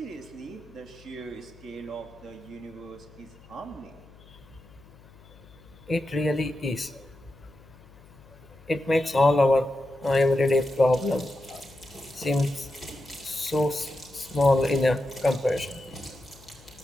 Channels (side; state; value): left; noise; hum, 23 dB below the sound